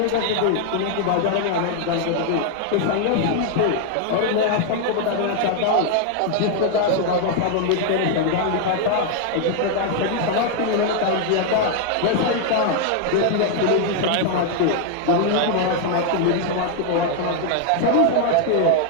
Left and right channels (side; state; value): both; different; correlation 0.00